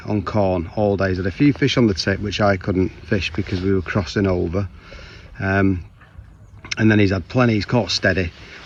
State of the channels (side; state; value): both; identical; correlation 1.00